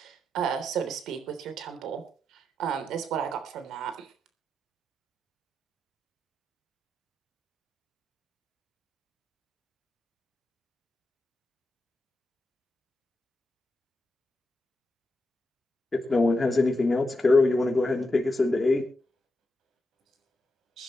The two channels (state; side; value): normal; both; correlation 0.86